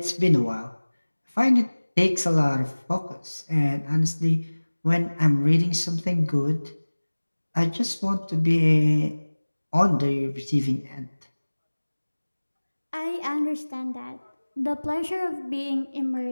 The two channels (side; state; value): both; inverted; correlation -1.00